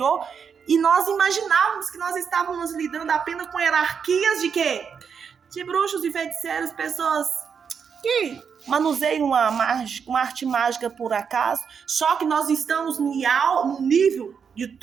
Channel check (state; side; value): quieter; left; 6.6 dB